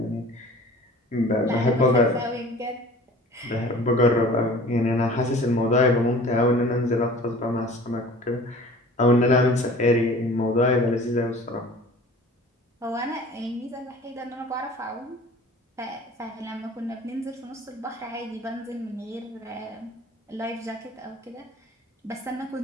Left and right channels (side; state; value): both; normal; correlation 0.44